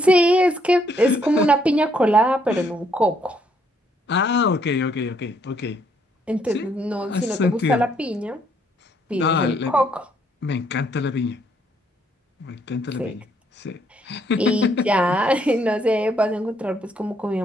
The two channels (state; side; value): normal; both; correlation 0.70